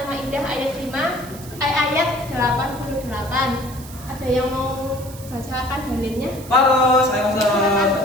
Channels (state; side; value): noise; right; hiss, 17 dB below the sound